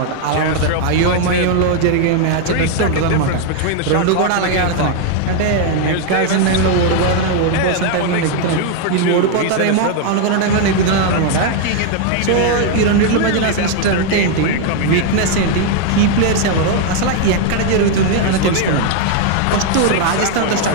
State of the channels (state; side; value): different; both; correlation 0.00